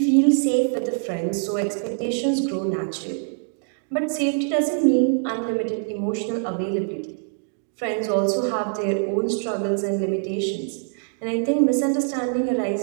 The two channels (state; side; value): silent; left; digital silence